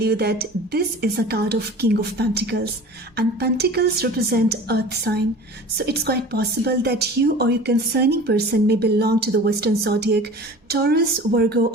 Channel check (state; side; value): normal; both; correlation 0.40